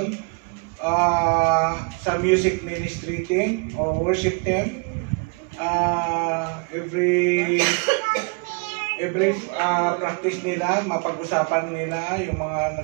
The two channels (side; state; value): left; quieter; 34.4 dB